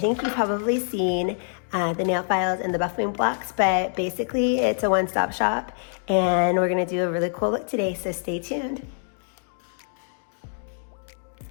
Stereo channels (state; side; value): silent; right; digital silence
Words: you've probably seen the nail files and the buffing blocks, but basically it's a one-stop shop, and we're going to do a really cool look today, so stay tuned.